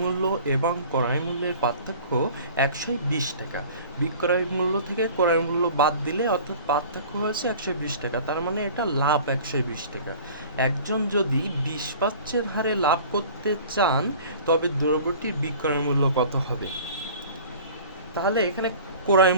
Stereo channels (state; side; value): inverted; both; correlation -0.44